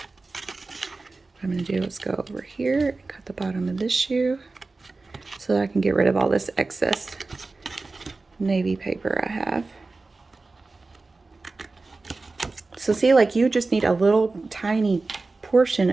I'm going to do is go over here and cut the bottom of this shoe so that I can get rid of all this excess navy paper I have. So see, like, you just need a little tiny portion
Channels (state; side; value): quieter; left; 3.6 dB